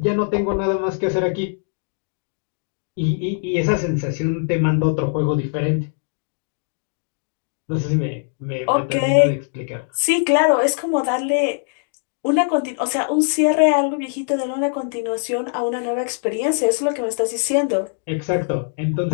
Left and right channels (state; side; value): silent; right; 65 dB below the other